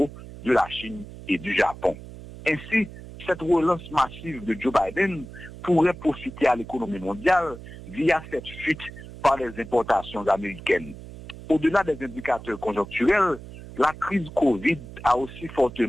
de la Chine et du Japon. Ainsi, cette relance massive de Joe Biden pourrait profiter à l'économie mondiale via cette fuite par les importations américaines. Au-delà des indicateurs conjoncturels, la crise Covid a aussi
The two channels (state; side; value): noise; right; hum, 14 dB below the sound